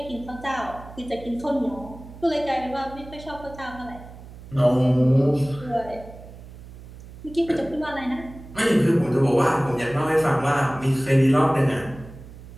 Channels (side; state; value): right; noise; hum, 17 dB below the sound